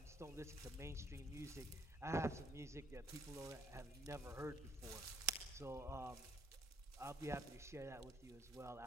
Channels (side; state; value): both; normal; correlation 0.66